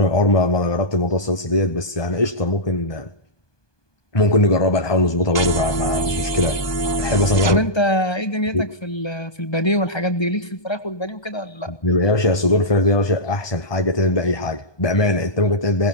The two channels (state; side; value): late; right; 1.2 ms